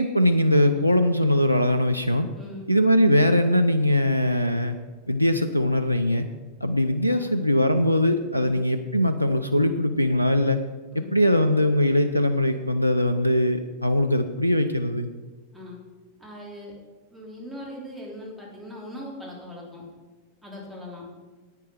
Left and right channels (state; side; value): inverted; both; correlation -0.81